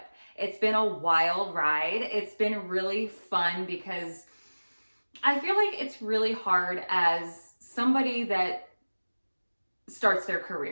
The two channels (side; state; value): both; inverted; correlation -1.00